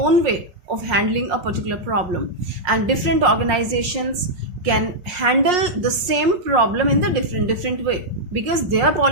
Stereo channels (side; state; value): left; late; 5.5 ms